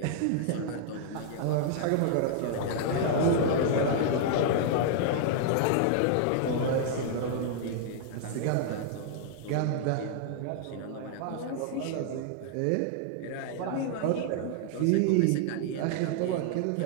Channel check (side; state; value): both; different; correlation -0.01